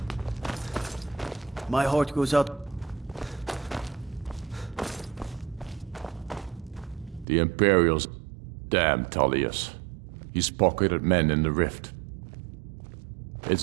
My heart goes out. The Imperials... Damn Tullius. He's pocketed men in the rift.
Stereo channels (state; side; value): drops out; left; at 7.2 s